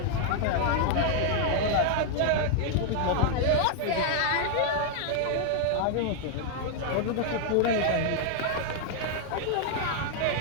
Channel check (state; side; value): different; both; correlation 0.00